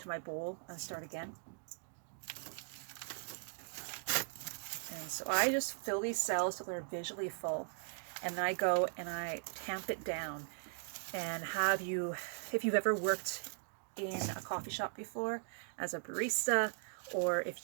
my bowl and start again. And so I just fill these cells till they're visually full, and then I go and I tamp it down. And if you've ever worked in a coffee shop before as a barista, or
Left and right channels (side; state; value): left; silent; digital silence